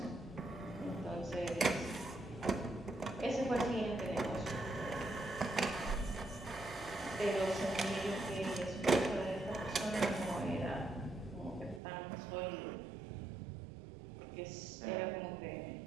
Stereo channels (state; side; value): drops out; left; at 11.8 s